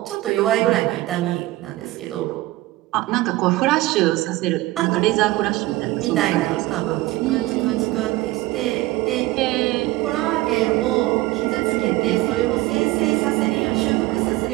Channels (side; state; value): left; quieter; 18.4 dB